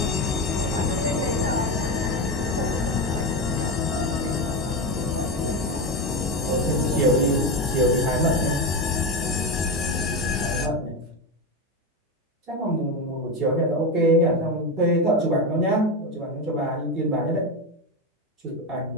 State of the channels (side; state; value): both; normal; correlation 0.15